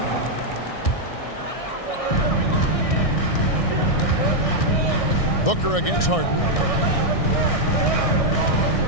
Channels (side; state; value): right; late; 1.6 ms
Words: Booker against Harden.